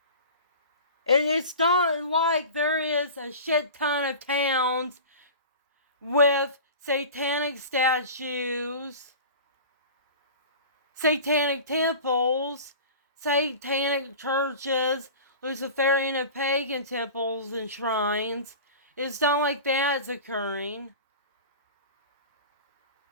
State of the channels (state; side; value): inverted; both; correlation -0.36